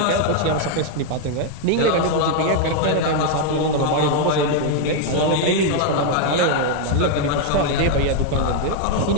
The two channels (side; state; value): both; different; correlation 0.00